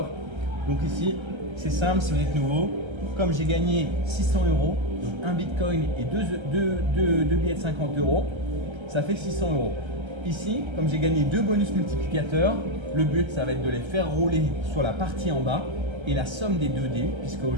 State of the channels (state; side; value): late; left; 1.3 ms